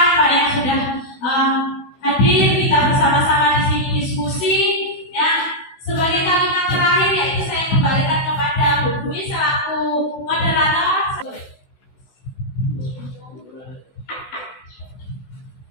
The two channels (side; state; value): right; late; 16 ms